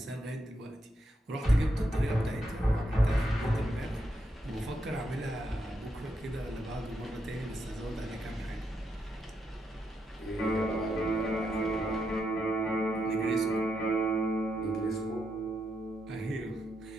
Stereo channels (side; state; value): both; normal; correlation 0.82